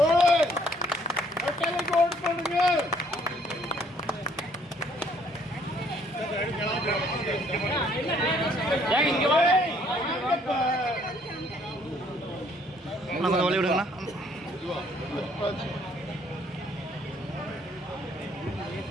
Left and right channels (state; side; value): normal; both; correlation 0.64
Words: கொஞ்சம் வழி விடுங்கண்ணா.